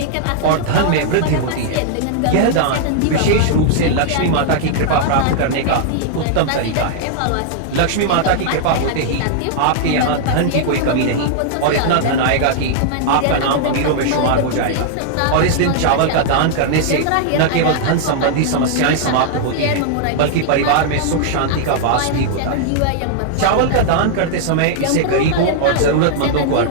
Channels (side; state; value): both; different; correlation -0.01